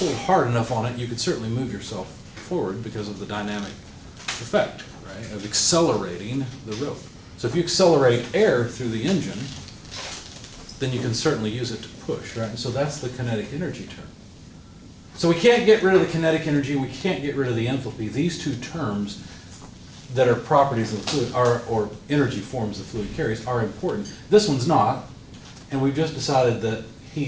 hard enough on it, you could certainly move yourself forward because of the dynamic effect, right, of accelerating the rope. So if you accelerate air through the engine, then you can certainly use it to push, right? And so that's the kinetic energy term. So we can't get rid of the kinetic energy, we can't get rid of the enthalpy. These two terms that are properties of the fluid, or energy forms the fluid carries, are important. This one's not, and we've just decided that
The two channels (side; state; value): both; identical; correlation 1.00